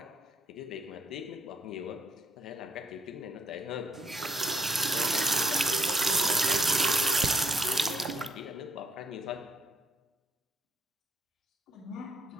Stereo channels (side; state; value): both; normal; correlation 0.71